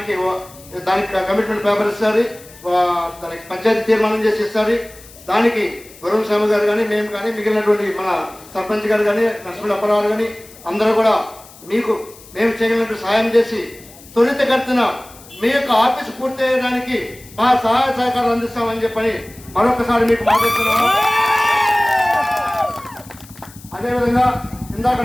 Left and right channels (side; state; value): left; noise; hiss, 21 dB below the sound